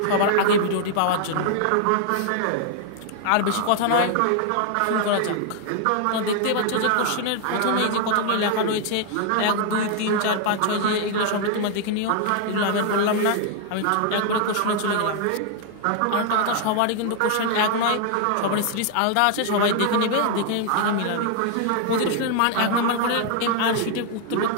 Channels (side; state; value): both; different; correlation 0.00